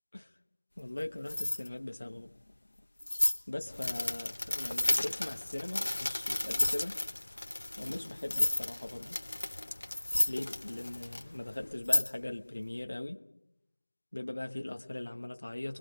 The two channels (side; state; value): both; inverted; correlation -1.00